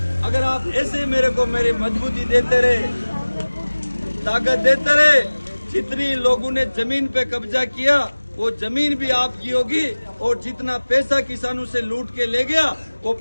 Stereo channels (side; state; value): both; inverted; correlation -1.00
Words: अगर आप ऐसे मेरे को मेरी मजबूती देते रहे, ताकत देते रहे, जितनी लोगों ने जमीन पे कब्जा किया वो जमीन भी आपकी होगी, और जितना पैसा किसानों से लूट के ले गया वो